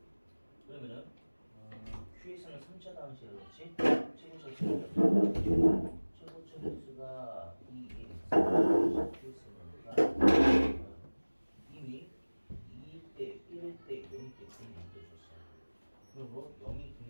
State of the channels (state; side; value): inverted; both; correlation -1.00